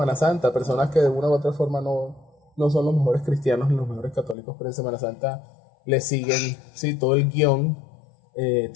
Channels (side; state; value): right; drops out; at 4.4 s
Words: Santa. Personas que de una u otra forma no son los mejores cristianos ni los mejores católicos, pero en Semana Santa le siguen, sí, todo el guión.